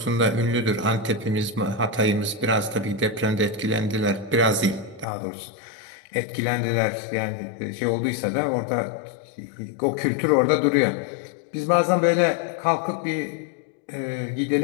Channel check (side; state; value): right; drops out; at 5.1 s